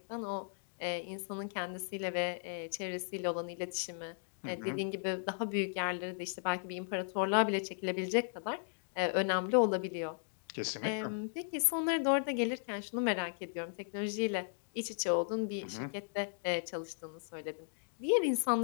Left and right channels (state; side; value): silent; right; digital silence